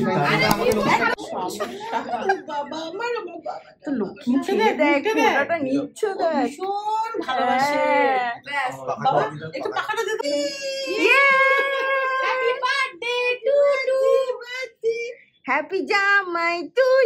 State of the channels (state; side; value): identical; both; correlation 1.00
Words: বাবা আমার বাবা তো লক্ষ্মী ছেলে দেখ, ওটা নিচ্ছ দেখ, ভীষণ ভালোবাসে। ব্যাস। বাবা একটু পাখাটা দে তো। Happy birthday to to. Happy জামাই